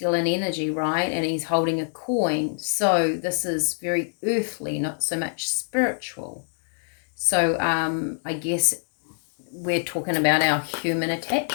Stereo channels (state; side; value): silent; right; digital silence